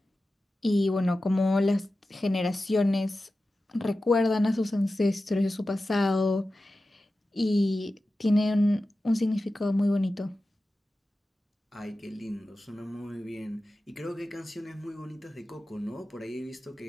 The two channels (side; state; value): both; normal; correlation 0.94